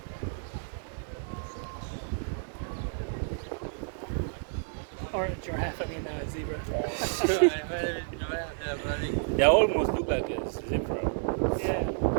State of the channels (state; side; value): silent; left; digital silence